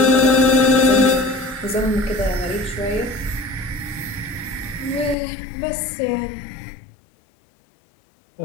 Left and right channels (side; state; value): right; drops out; at 5.2 s